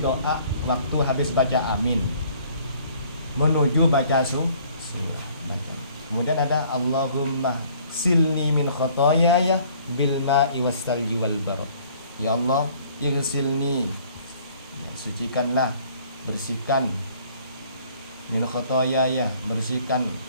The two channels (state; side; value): inverted; both; correlation -0.57